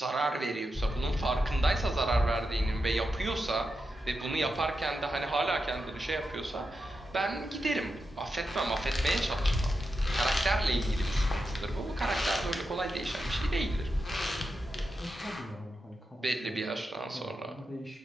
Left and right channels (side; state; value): both; normal; correlation 0.88